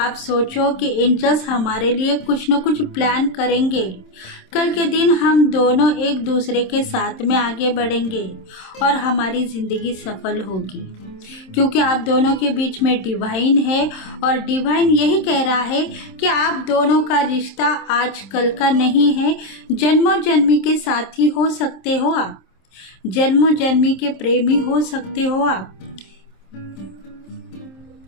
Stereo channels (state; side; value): late; right; 26 ms